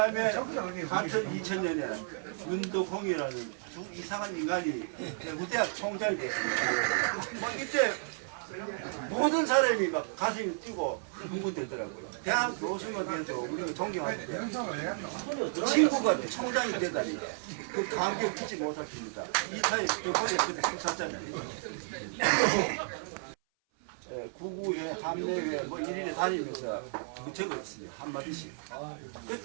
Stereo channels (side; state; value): left; silent; 56 dB below the other